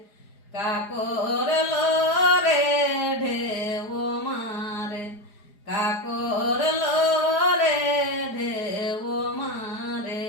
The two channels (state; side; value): late; right; 4.9 ms